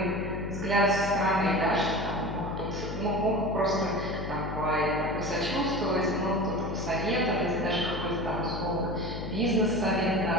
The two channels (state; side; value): noise; left; hum, 6 dB below the sound